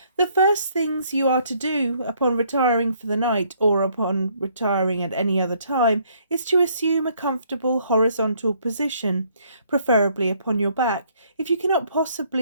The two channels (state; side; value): inverted; both; correlation -0.66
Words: The first things you are to do upon retiring for the night, or upon retiring at any other time, is to assume a comfortable horizontal position, preferably upon your back. If you cannot